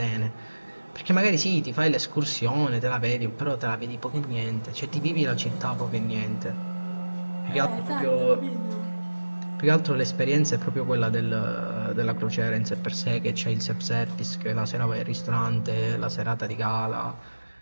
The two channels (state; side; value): inverted; both; correlation -1.00